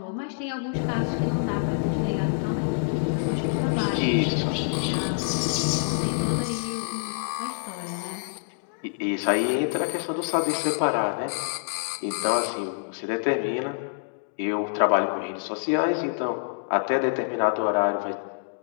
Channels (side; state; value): right; silent; digital silence